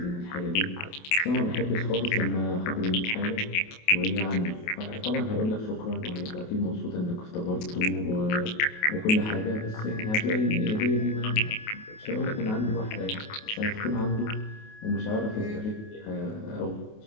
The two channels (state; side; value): late; right; 28 ms